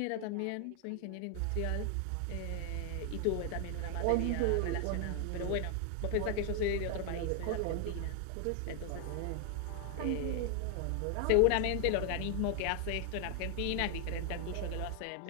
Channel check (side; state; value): both; different; correlation 0.00